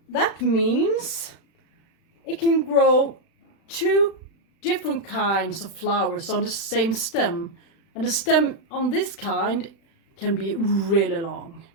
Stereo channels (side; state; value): right; late; 36 ms